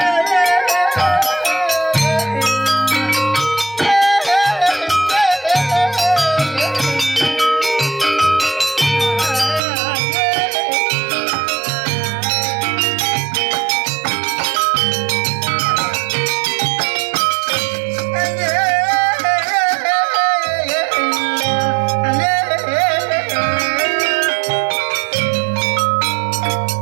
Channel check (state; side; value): drops out; left; at 9.6 s